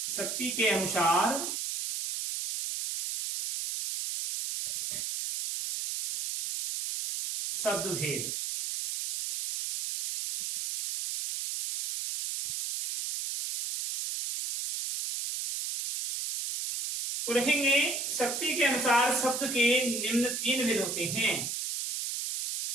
शक्ति के अनुसार शब्द भेद। तो लिखेंगे शक्ति के अनुसार शब्द के निम्न 3 भेद होते हैं।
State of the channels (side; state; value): right; noise; hiss, 3 dB below the sound